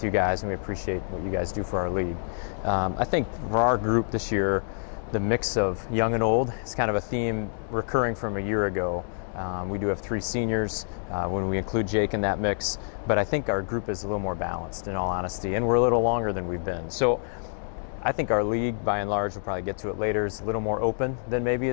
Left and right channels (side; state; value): right; silent; digital silence